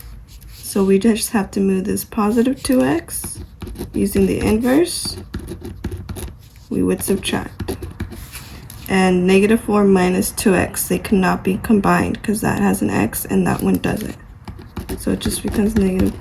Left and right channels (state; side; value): identical; both; correlation 1.00